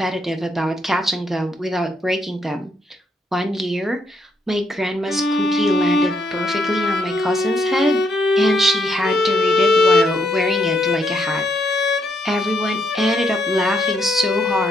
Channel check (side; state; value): both; normal; correlation 0.75